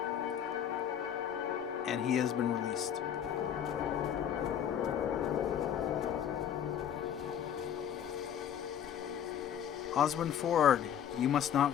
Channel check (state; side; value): quieter; right; 9.4 dB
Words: and he has been released. Oswin Ford, you must